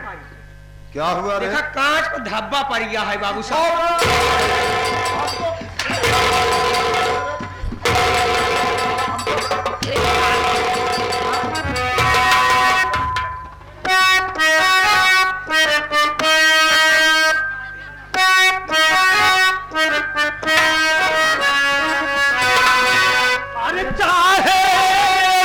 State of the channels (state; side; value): identical; both; correlation 1.00